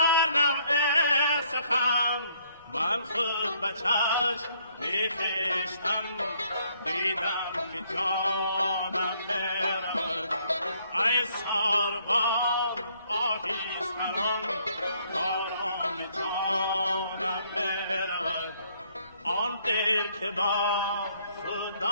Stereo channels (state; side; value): inverted; both; correlation -0.66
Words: نوع سخن. من خود به چشم میخیشتم دیدم که جانم میرود. ای ساربان آهیستران کارام جانم میرود. آن دل که با خود